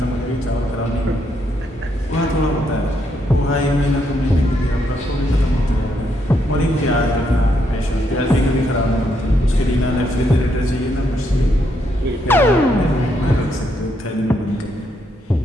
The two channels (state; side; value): normal; both; correlation 0.76